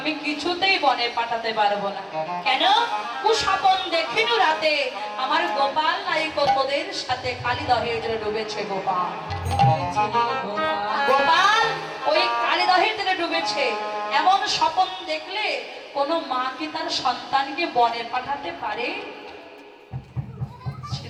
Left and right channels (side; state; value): both; identical; correlation 1.00